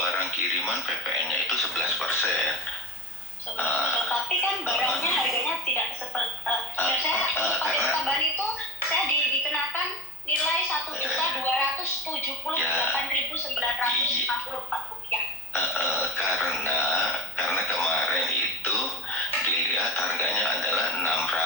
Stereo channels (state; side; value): normal; both; correlation 0.31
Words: kiriman PPN-nya itu 11%. Tapi kan barangnya harganya tidak seperti pajak tambahan itu saya dikenakan nilai 1.278.954 rupiah. Karena kemarin itu dilihat harganya adalah $600.